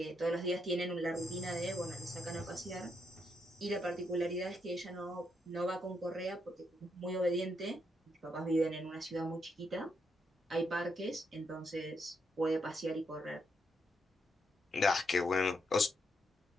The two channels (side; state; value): both; normal; correlation 0.79